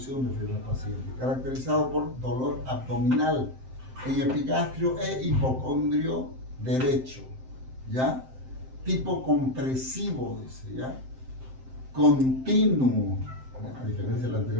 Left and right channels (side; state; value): left; late; 7.7 ms